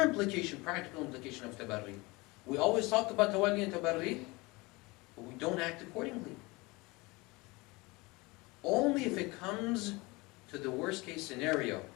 implication, practical implication of tabarri. We always talk about tawalli and tabarri, but we don't act accordingly. Only if it comes to the worst case scenario,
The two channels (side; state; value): right; quieter; 24.1 dB